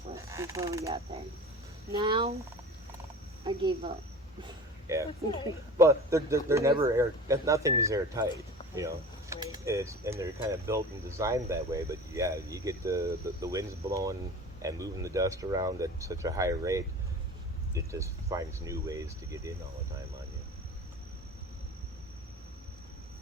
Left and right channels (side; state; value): both; normal; correlation 0.37